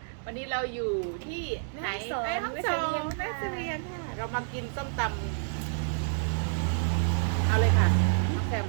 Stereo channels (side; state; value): left; silent; digital silence